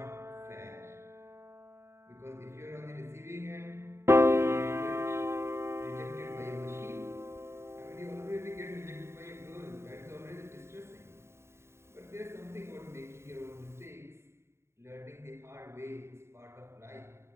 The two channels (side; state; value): left; late; 0.13 ms